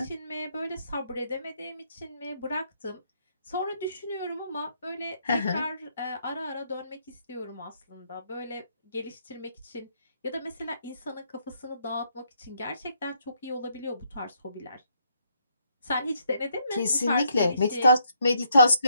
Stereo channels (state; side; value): inverted; both; correlation -0.72